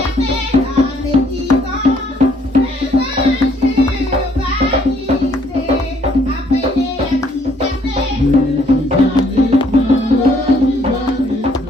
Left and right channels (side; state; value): both; normal; correlation 0.64